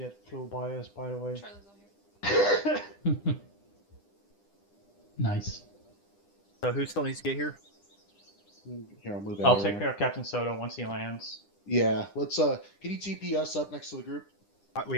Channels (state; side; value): late; right; 9.9 ms